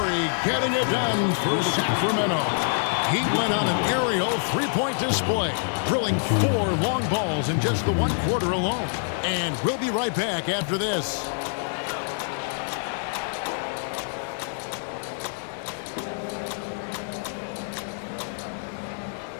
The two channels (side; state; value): right; silent; 61 dB below the other